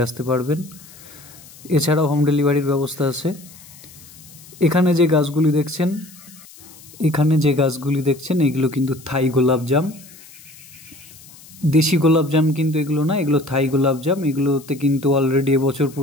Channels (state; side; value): noise; left; hiss, 21 dB below the sound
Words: আসতে পারবেন। এছাড়াও হোম ডেলিভারির ব্যবস্থা আছে। এখানে যে গাছগুলি দেখছেন এগুলো কিন্তু থাই গোলাপজাম, দেশি গোলাপজাম কিন্তু এগুলো না, এগুলো থাই গোলাপজাম। এগুলোতে কিন্তু অলরেডি এবছর